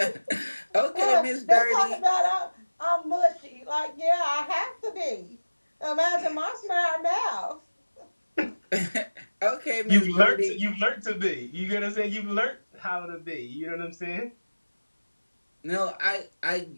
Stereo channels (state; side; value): inverted; both; correlation -1.00